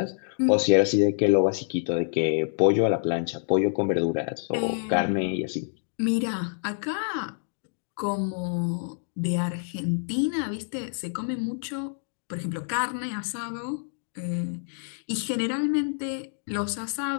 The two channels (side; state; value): right; silent; digital silence